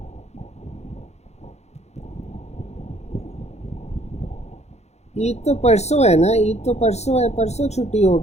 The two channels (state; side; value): late; right; 0.32 ms